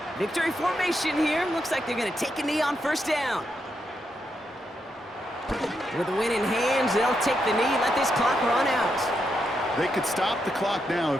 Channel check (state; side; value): normal; both; correlation 0.82